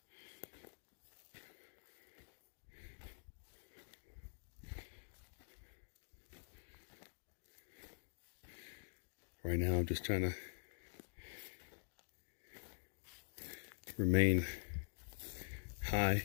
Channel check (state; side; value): silent; right; digital silence